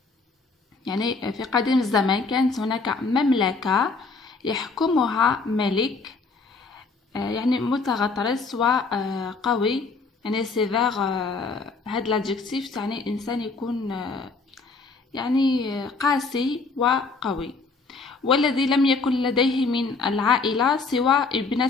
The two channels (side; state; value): right; quieter; 4.2 dB